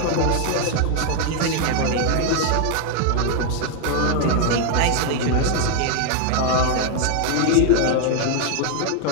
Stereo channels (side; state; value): both; different; correlation 0.01